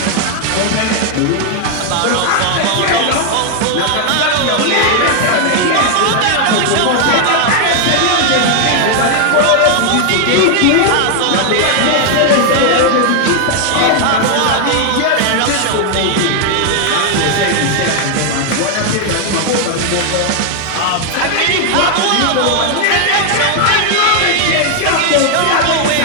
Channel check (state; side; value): different; both; correlation 0.00